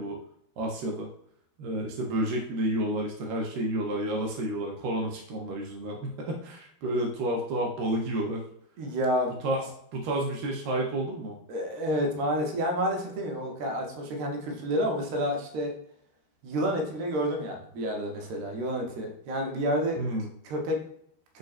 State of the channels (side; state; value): left; late; 13 ms